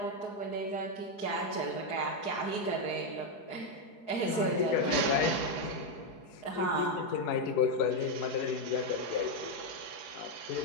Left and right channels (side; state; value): right; late; 4.7 ms